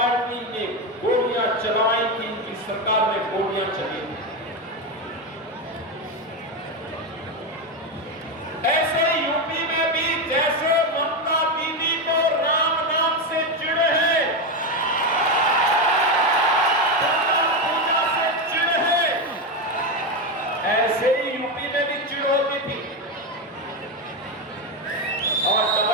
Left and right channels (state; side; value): normal; both; correlation 0.11